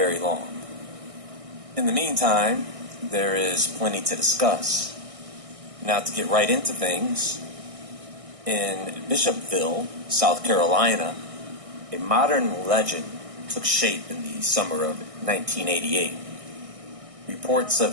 long. In the meantime, there is plenty to discuss. Now to get right into things, in Bishopville, South Carolina, a modern legend took shape in the summer of 1988. Reports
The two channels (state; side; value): late; left; 1.6 ms